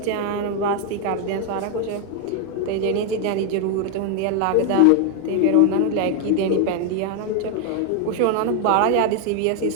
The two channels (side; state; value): both; different; correlation 0.00